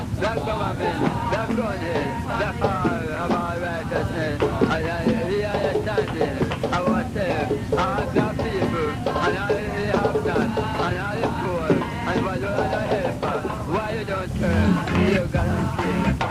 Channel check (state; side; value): identical; both; correlation 1.00